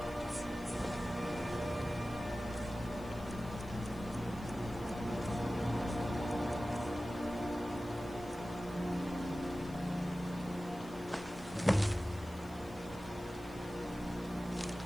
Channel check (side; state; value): left; noise; hiss, 23 dB below the sound